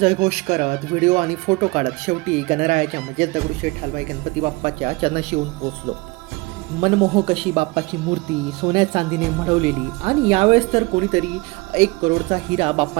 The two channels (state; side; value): quieter; left; 24.7 dB